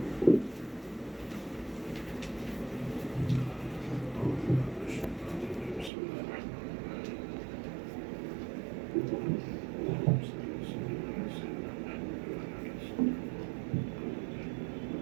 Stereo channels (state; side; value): drops out; left; at 5.9 s